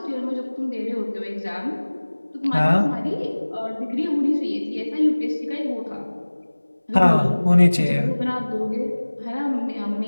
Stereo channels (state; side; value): inverted; both; correlation -1.00